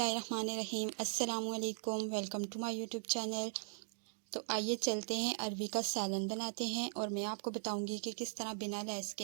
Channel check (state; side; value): silent; left; digital silence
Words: अस्सलामु अलैकुम। Welcome to my YouTube channel. तो आइए चलते हैं अरवी का सालन बनाते हैं, और मैं आपको बताऊंगी कि किस तरह बिना लैस के